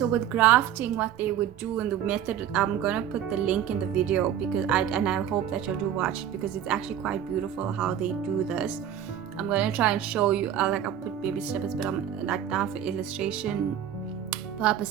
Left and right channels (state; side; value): quieter; left; 9.9 dB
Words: with grafting, what they would do in the method, I'm gonna put the link in the video, because I hope that you'll do watch it, because it's actually quite beautiful how they do this. I'm gonna try and show you. I'll put baby snippets, but I'm like, now for illustration